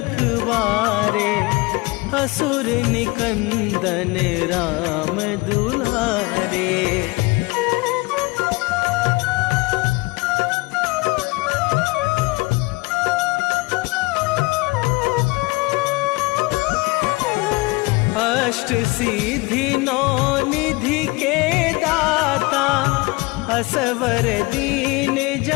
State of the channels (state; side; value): quieter; right; 24.5 dB